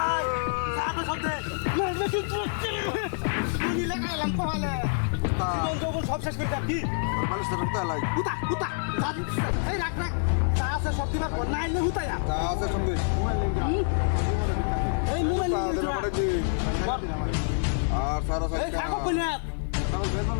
সব শেষ করে যাবি মানুষটা ঢুকতে লাই হুতা হুতা এই রাখ রাখ চা আছে সব দিবার পর নাই না হুতায়া তা আছে সঙ্গে এই মোবাইল আর সারা এই থাকো কইনা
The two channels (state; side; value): silent; right; 60 dB below the other